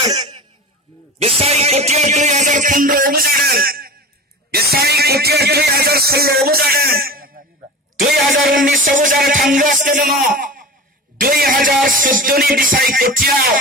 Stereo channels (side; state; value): both; normal; correlation 0.32